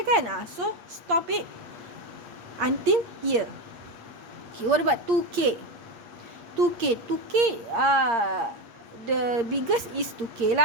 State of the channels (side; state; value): left; late; 8.6 ms